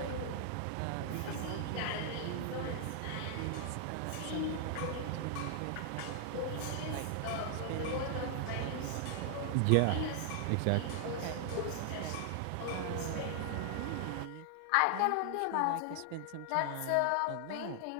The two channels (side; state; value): both; different; correlation 0.00